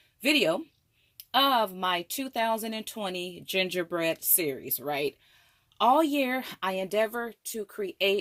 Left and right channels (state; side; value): identical; both; correlation 1.00